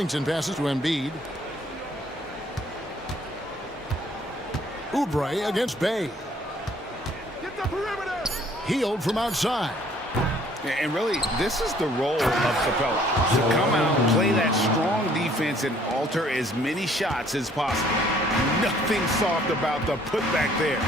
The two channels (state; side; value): normal; both; correlation 0.60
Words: passes to Embiid. Oubre against Bay. Get the perimeter. Healed from outside. And really, this is the role of Capella. To come out, play that strong defense, and alter as many shots as possible. Nothing soft about the putback there.